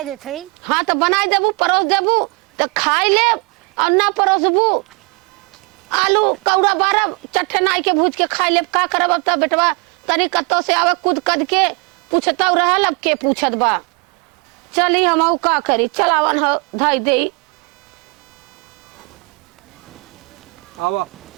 देते हाँ तो बनाई देबू परोस देबू तो खाई ले और ना परोसबू आलू कौड़ा बारब चट्टे नाई के भूज के खाई ले का करब अब तब बेटवा तनी कत्तो से आवे कूद कद के पूछता रहल अब के पूछत बा चली हम का करी चलावन हो धाई दे आवा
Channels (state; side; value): quieter; left; 31.2 dB